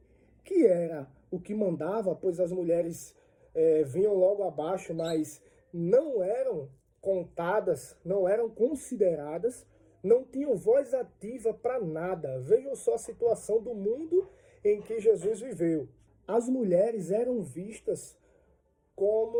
que era o que mandava, pois as mulheres vinham logo abaixo, mas não eram contadas, não eram consideradas, não tinham voz ativa para nada. Vejam só a situação do mundo em que Jesus viveu. As mulheres eram vistas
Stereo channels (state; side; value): identical; both; correlation 1.00